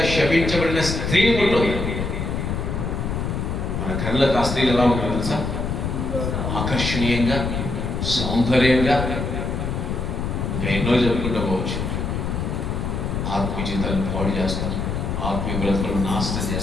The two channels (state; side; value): noise; left; rumble, 2 dB below the sound